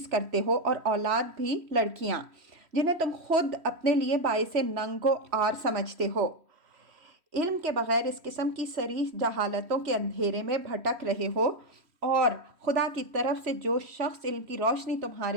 کرتے ہو اور اولاد بھی لڑکیاں جنہیں تم خود اپنے لیے باعث ننگ و عار سمجھتے ہو۔ علم کے بغیر اس قسم کی صریح جہالتوں کے اندھیرے میں بھٹک رہے ہو اور خدا کی طرف سے جو شخص علم کی روشنی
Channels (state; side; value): late; left; 3.1 ms